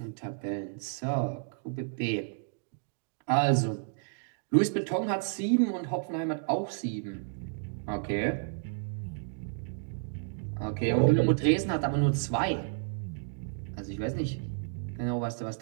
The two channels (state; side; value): silent; left; digital silence